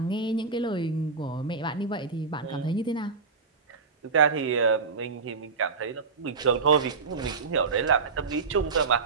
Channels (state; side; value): quieter; left; 4.7 dB